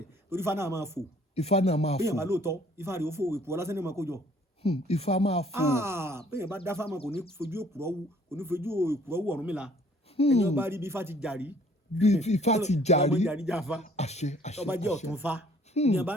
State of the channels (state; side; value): normal; both; correlation 0.58